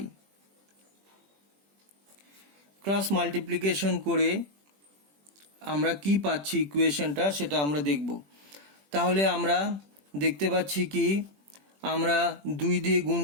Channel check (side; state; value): left; late; 20 ms